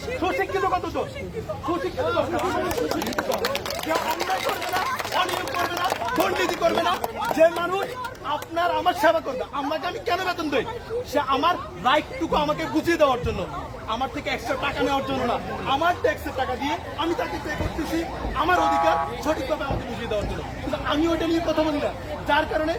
সুশিক্ষিত কতজন, সুশিক্ষিত অন্যায় করবে না, অনিয়ম করবে না, দুর্নীতি করবে না, যে মানুষ আপনার আমার সেবা করবে। আমাকে আমি কেন বেতন দেই? সে আমার রাইটটুকু আমাকে বুঝিয়ে দেওয়ার জন্য, আমার থেকে এক্সট্রা টাকা নেওয়ার জন্য না, আমার ট্যাক্সের টাকা দিয়ে আমি তাকে পে করতেছি আমার অধিকার সঠিকভাবে আমাকে বুঝিয়ে দেওয়ার জন্য। কিন্তু আমি ওইটা নিয়ে কথা বলি না, যার কারণে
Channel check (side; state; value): both; identical; correlation 1.00